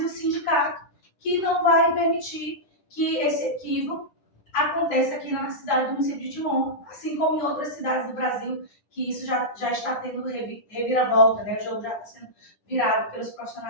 o sindicato, que não vai permitir que esse equívoco aconteça aqui na cidade do município de Timon, assim como em outras cidades do Brasil, que isso já está tendo reviravolta, né? O jogo já está sendo virado pelos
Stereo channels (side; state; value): right; late; 10 ms